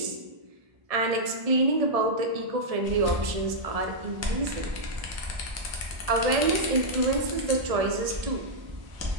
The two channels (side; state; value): left; late; 1.7 ms